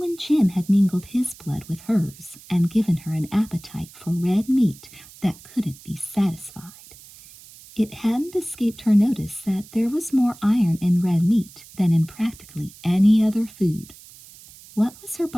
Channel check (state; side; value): noise; right; hiss, 21 dB below the sound